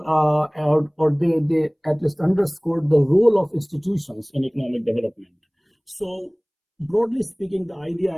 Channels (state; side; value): identical; both; correlation 1.00